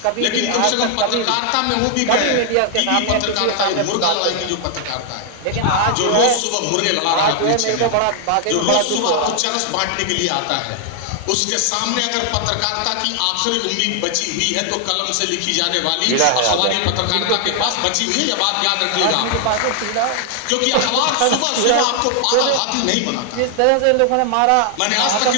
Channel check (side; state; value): both; different; correlation 0.00